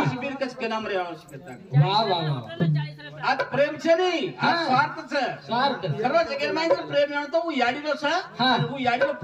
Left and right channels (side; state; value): both; identical; correlation 1.00